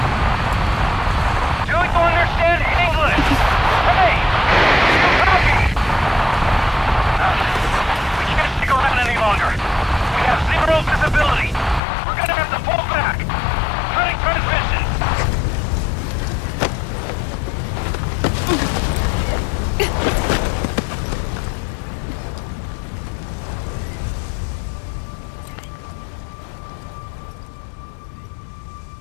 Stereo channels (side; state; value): right; drops out; at 11.8 s